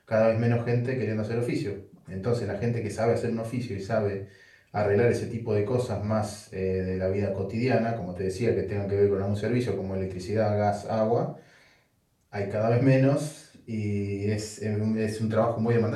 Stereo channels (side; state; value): both; identical; correlation 1.00